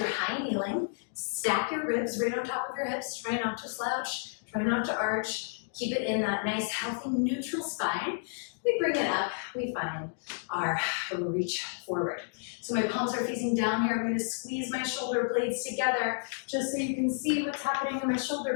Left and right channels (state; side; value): silent; right; digital silence